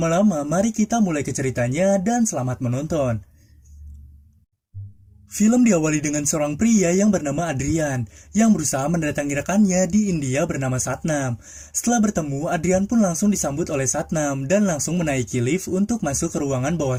mari kita mulai ke ceritanya, dan selamat menonton. Film diawali dengan seorang pria yang bernama Adrian, yang berusaha mendatangi rekannya di India bernama Satnam. Setelah bertemu, Adrian pun langsung disambut oleh Satnam dan langsung menaiki lift untuk masuk ke ruangan bawah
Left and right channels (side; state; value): both; identical; correlation 1.00